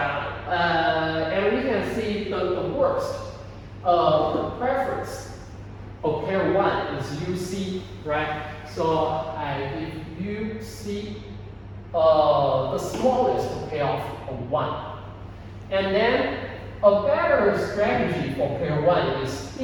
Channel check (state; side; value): identical; both; correlation 1.00